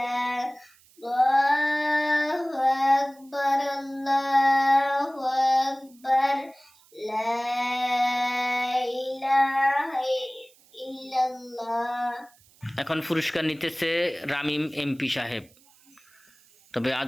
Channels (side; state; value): right; noise; hiss, 29 dB below the sound